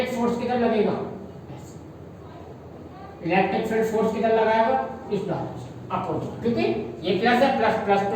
फोर्स किधर लगेगा? इलेक्ट्रिक फील्ड फोर्स किधर लगाएगा? इस डायरेक्शन अपोजिट, क्योंकि ये प्लस है, प्लस प्लस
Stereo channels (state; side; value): identical; both; correlation 1.00